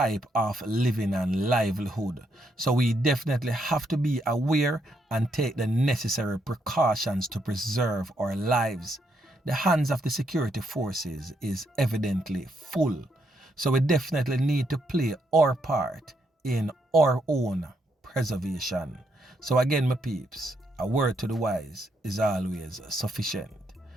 of living and livelihood. So we definitely have to be aware and take the necessary precautions to preserve our lives. The hands of the security forces is evidently full, so we definitely need to play our part in our own preservation. So again, my peeps, a word to the wise is always sufficient.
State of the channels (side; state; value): both; normal; correlation 0.77